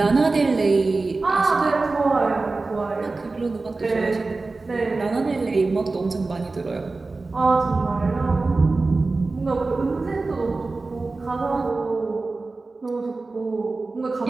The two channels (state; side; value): quieter; left; 3.6 dB